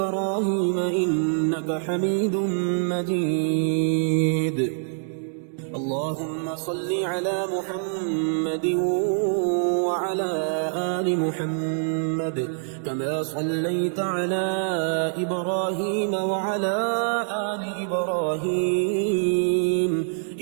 إنك حميد مجيد. اللهم صل على محمد وعلى آل محمد كما صليت على إبراهيم وعلى آل إبراهيم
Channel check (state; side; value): silent; left; digital silence